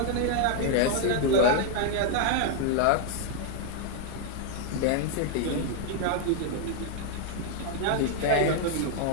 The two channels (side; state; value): both; different; correlation 0.00